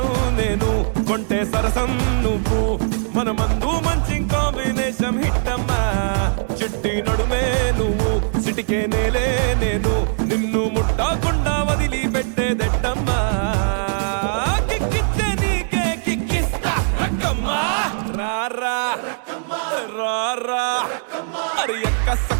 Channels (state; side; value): silent; left; digital silence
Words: నేను కొంటే సరసం నువ్వు మన మందు మంచి కాంబినేషన్ హిట్ అమ్మా చిట్టి నడుమే నువ్వు సిటికే నేలే నేను నిన్ను ముట్టకుండా వదిలి పెట్టేదెట్టమ్మా కిక్కిచ్చే నీకే కిక్కిస్తా రక్కమ్మా రారా రారా అరే ఎక్క